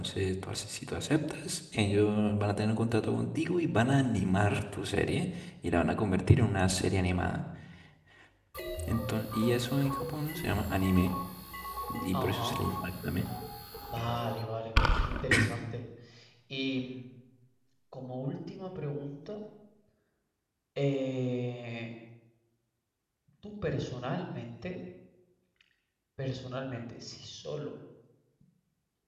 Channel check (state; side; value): identical; both; correlation 1.00